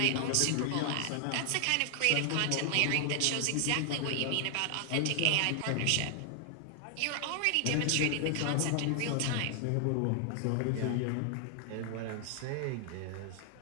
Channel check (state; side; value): different; both; correlation 0.00